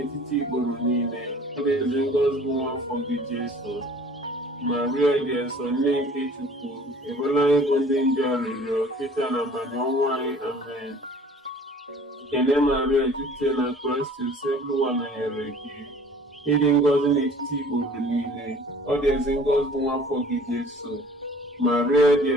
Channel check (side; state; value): both; normal; correlation 0.50